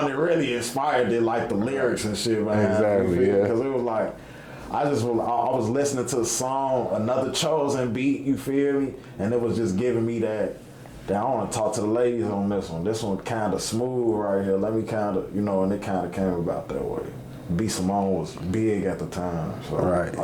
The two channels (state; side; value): identical; both; correlation 1.00